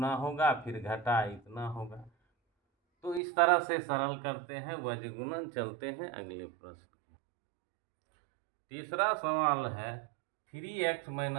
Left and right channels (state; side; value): drops out; left; at 3.2 s